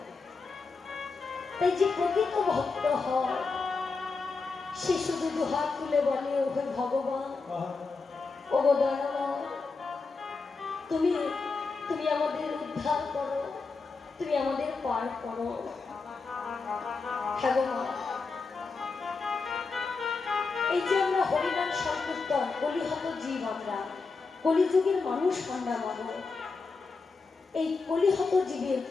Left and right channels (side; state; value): right; quieter; 4.4 dB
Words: তাই যে প্রকৃত ভক্ত হয়, সে শুধু দুহাত তুলে বলে, ওহে ভগবান, ওগো দয়াময়, তুমি তুমি আমাদের উদ্ধার করো, তুমি আমাদের পার করো। ভগবান, এই যে আমরা হরিনাম সংকীর্তন, কলিহত জীব, আমরা কলিযুগের মানুষ, আমরা মানব। এই কলিহত জীবের,